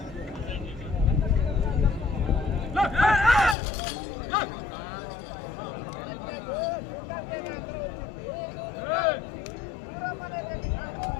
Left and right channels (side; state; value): right; drops out; at 3.6 s